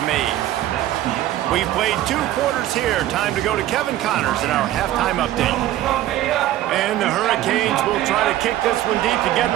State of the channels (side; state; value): left; quieter; 13.7 dB